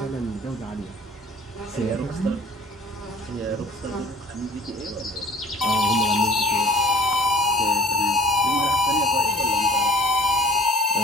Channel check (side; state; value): both; normal; correlation 0.51